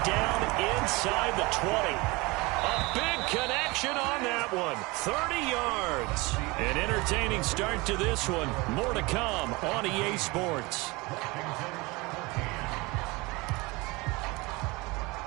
down inside the 20. A big connection on that one. 30 yards. An entertaining start to this one. More to come on EA Sports.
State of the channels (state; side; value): quieter; left; 24.3 dB